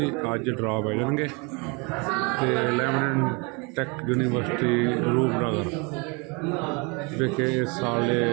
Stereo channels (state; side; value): quieter; left; 30.1 dB